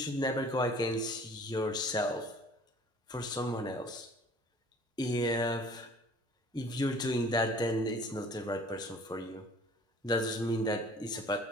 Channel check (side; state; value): both; normal; correlation 0.50